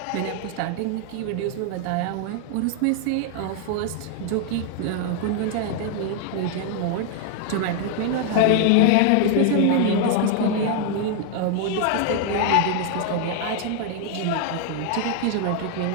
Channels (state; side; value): different; both; correlation 0.00